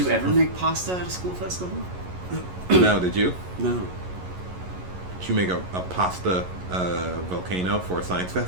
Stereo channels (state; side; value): late; left; 11 ms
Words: you ever make pasta at a school festival? No, did you? No. Did you make a pasta volcano for a science